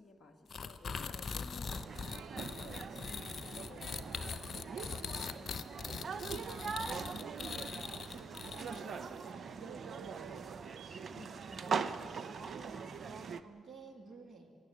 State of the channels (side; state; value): both; normal; correlation 0.76